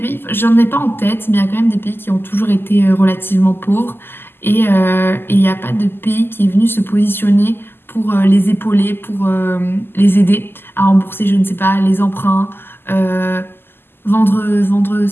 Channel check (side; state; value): right; late; 0.11 ms